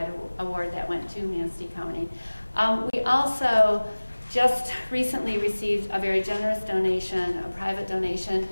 award that went to Manistee County. We also just recently received a very generous donation, a private donation,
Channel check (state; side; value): inverted; both; correlation -1.00